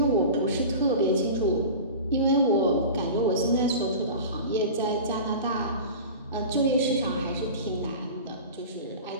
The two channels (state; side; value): inverted; both; correlation -0.34